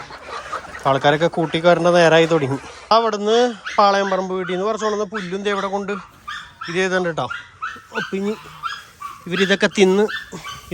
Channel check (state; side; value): identical; both; correlation 1.00